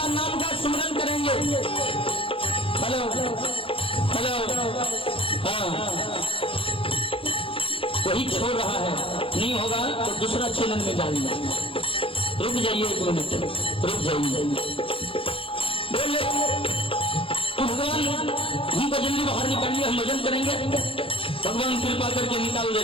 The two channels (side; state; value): right; late; 0.26 ms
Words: नाम का स्मरण करेंगे। हेलो हेलो, हाँ वही छोड़ रहा है, नहीं होगा तो दूसरा चैनल में डालिए। रुक जाइए 1 मिनट, रुक जाइए। बोले भगवान हमको जल्दी बाहर निकालिए, हम भजन करेंगे। भगवान कृपा करके निकाल